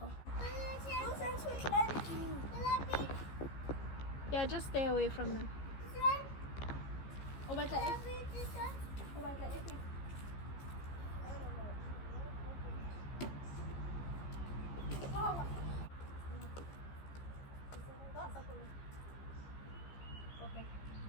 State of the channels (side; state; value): right; late; 15 ms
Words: Yeah, just stay away from them. O batla e? O batla e?